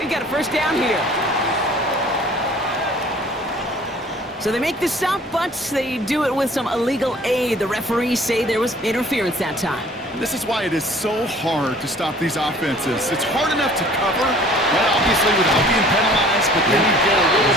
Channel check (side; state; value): both; normal; correlation 0.52